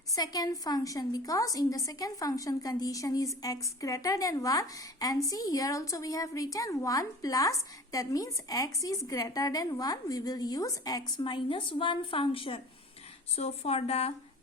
second function, because in the second function condition is x greater than 1, and see here also we have written 1 plus, that means x is greater than 1. We will use x minus 1 function. So for the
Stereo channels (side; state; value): both; normal; correlation 0.40